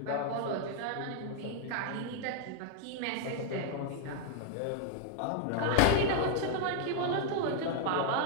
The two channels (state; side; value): different; both; correlation 0.00